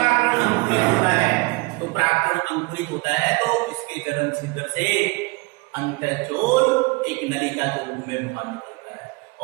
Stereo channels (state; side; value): quieter; left; 25.8 dB